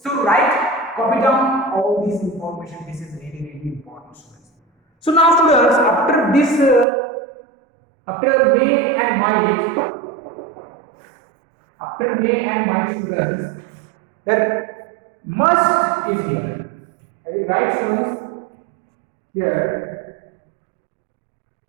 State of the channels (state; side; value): drops out; left; at 6.9 s